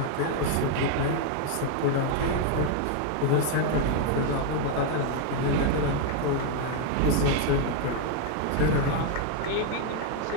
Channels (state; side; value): different; both; correlation 0.00